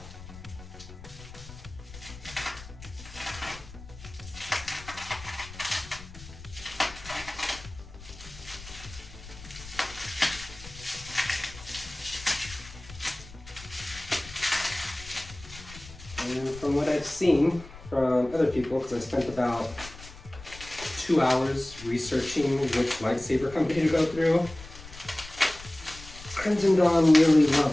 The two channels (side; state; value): left; noise; rumble, 16 dB below the sound